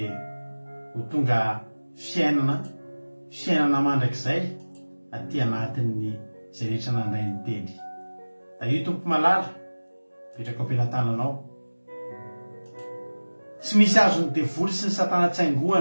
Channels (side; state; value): both; inverted; correlation -1.00